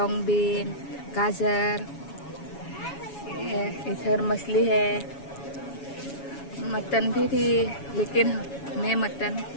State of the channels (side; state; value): right; late; 7.2 ms